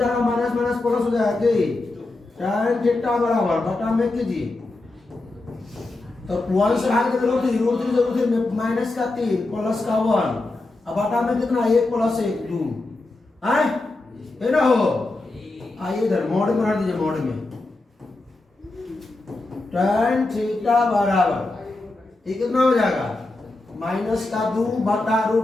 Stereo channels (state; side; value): quieter; right; 3.0 dB